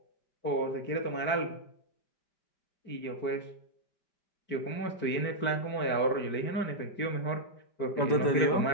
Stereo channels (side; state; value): right; late; 5.1 ms